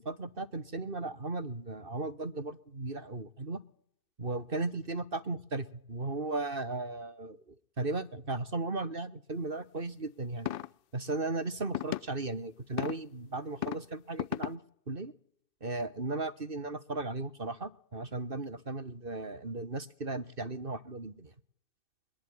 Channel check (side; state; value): left; late; 2.6 ms